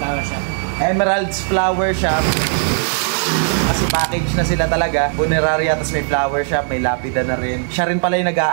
Shop. Emerald's Flower Shop. Kasi package na sila talaga. Funeraria, tapos may flower shop, may lapida na rin. Siya rin pala yung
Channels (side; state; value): left; silent; 66 dB below the other